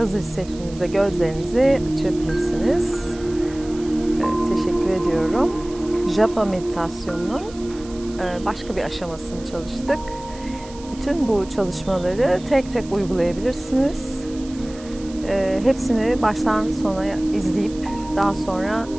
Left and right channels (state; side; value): noise; right; hiss, 20 dB below the sound